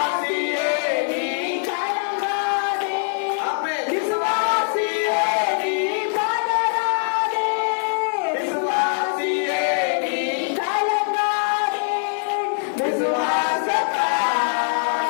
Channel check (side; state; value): right; silent; digital silence